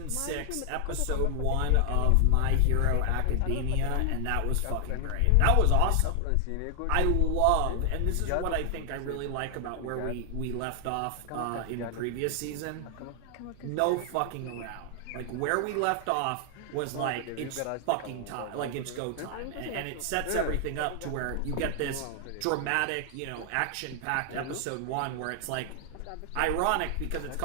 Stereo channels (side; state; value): both; different; correlation 0.00